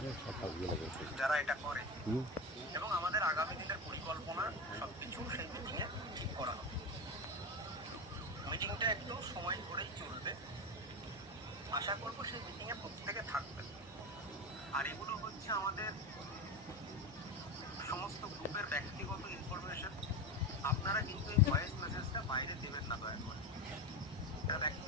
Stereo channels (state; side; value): normal; both; correlation 0.20